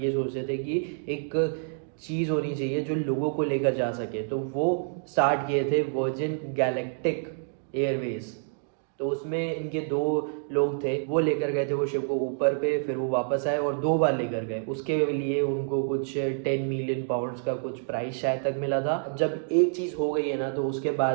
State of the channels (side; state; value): left; silent; digital silence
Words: सोचते थे कि एक चीज़ होनी चाहिए जो लोगों को लेकर जा सके। तो वो स्टार्ट किए थे वर्जिन गैलेक्टिक एयरवेज। तो उसमें इनके दो लोग थे, वो लेकर गए थे वो शिप को ऊपर पे, फिर वो वापस आए और 2 बार लेकर गए। उसके लिए उनको कुछ 10 मिलियन पाउंड्स का कुछ प्राइस शायद तक मिला था। अब जब एक चीज़ हो गई है ना, तो उसके